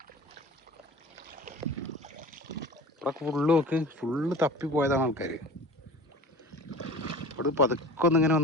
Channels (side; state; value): both; normal; correlation 0.39